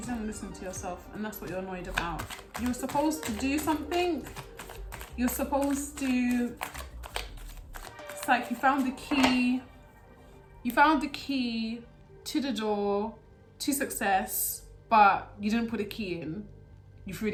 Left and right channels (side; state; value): both; identical; correlation 1.00